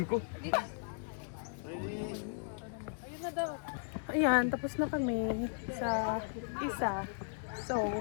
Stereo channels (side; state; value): right; silent; digital silence